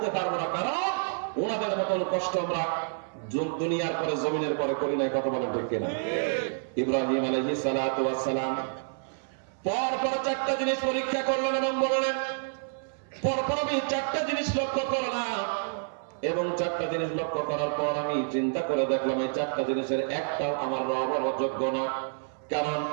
পারবো না, কারণ ওনাদের মতন কষ্ট আমরা দুনিয়ার পরে, জমিনের পরে করি নাই। কথা বলেন ঠিক কিনা? ইব্রাহিম আলাইহিস সালাতু ওয়াস সালাম পরপর চারটা জিনিস পরীক্ষা করলেন এবং বললেন, পরপর আমি চারটা জিনিস লক্ষ্য করলাম, এবং চারটা জিনিস লক্ষ্য করার পর আমি চিন্তা করে দেখলাম এই চারটা জিনিসের একটাও আমার রব হওয়ার যোগ্য না। কারণ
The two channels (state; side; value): silent; left; 59 dB below the other